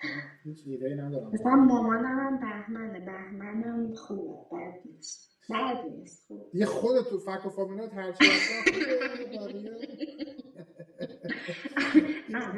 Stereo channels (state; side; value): identical; both; correlation 1.00